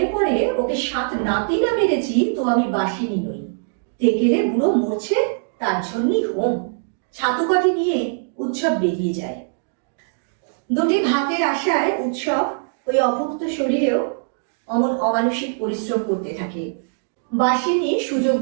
পড়ে ওকে 7 নাতি না মেরেছি তো আমি বাসিনী নই। তেকেলে বুড়ো মরছে, তার জন্যই হোম। ছাতু কটি নিয়ে উৎসব বেরিয়ে যায়। দুটি ভাতের আশায় উৎসব ওই অভুক্ত শরীরেও অমানসিক পরিশ্রম করতে থাকে। বাসিনী সুযোগ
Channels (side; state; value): left; silent; digital silence